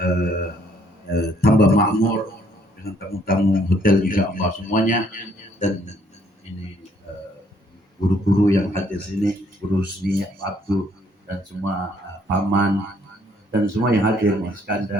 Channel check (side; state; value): both; normal; correlation 0.66